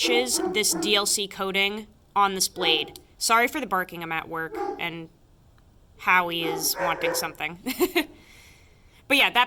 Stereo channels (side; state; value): both; identical; correlation 1.00